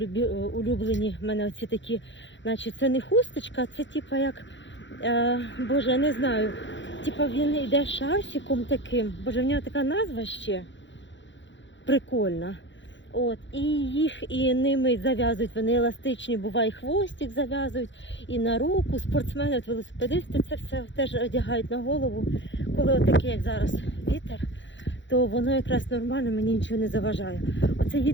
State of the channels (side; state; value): right; late; 0.54 ms